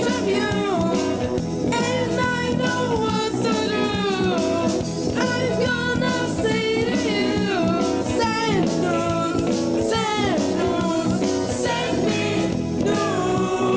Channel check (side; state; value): both; identical; correlation 1.00